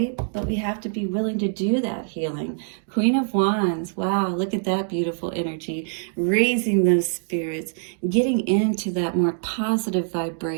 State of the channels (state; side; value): silent; left; 63 dB below the other